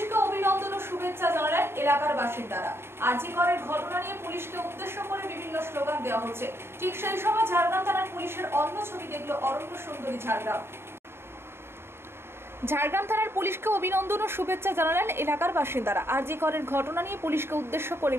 অভিনন্দন ও শুভেচ্ছা জানালেন এলাকার বাসিন্দারা। আরজিকরের ঘটনা নিয়ে পুলিশকে উদ্দেশ্য করে বিভিন্ন স্লোগান দেওয়া হচ্ছে। ঠিক সেই সময় ঝাড়গ্রাম থানার পুলিশের অন্য ছবি দেখল অরণ্য সুন্দরী ঝাড়গ্রাম। ঝাড়গ্রাম থানার পুলিশকে অভিনন্দন ও শুভেচ্ছা জানালেন এলাকার বাসিন্দারা। আরজিকরের ঘটনা নিয়ে পুলিশকে উদ্দেশ্য করে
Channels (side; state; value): left; late; 0.12 ms